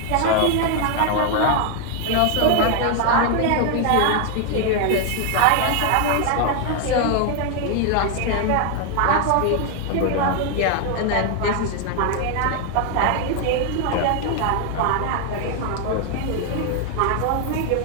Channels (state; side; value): different; both; correlation 0.00